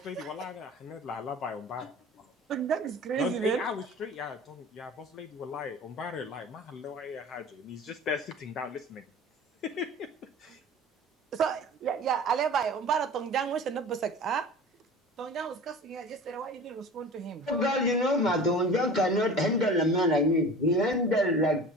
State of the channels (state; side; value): normal; both; correlation 0.39